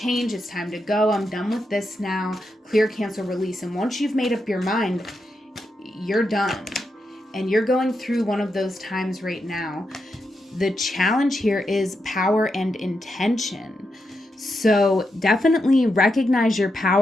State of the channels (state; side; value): normal; both; correlation 0.85